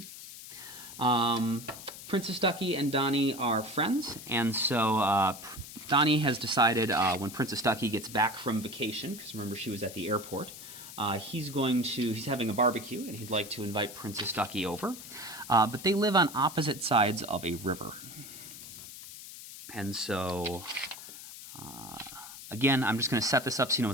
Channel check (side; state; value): left; noise; hiss, 13 dB below the sound